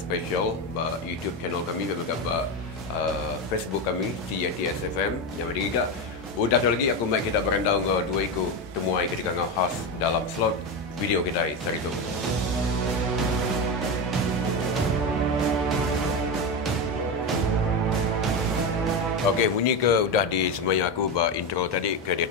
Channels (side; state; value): both; normal; correlation 0.15